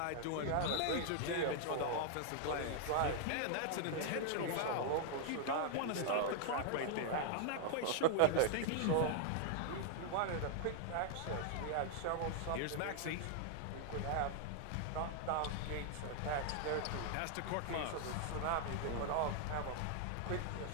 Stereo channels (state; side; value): different; both; correlation 0.00